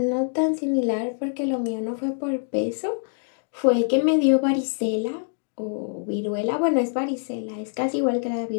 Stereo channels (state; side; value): silent; right; digital silence